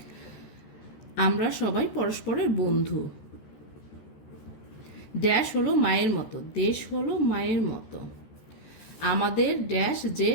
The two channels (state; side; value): late; right; 14 ms